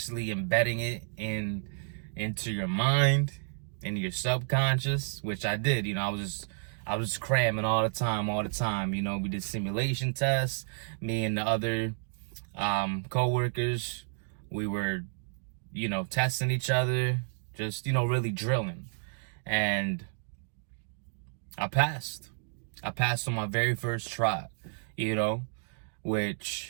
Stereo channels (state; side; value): silent; left; digital silence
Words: embedding it into your mind, into your subconscious, which I did. You know, I was cramming all the time. You know, we did simulation tests. Me and the other co-workers, we were, you know, testing each other, just, you know, really drilling. And I passed. I passed on my very first try, you know,